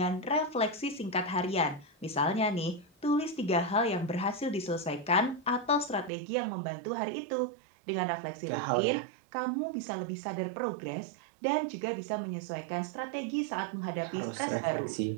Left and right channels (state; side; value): drops out; left; at 6.1 s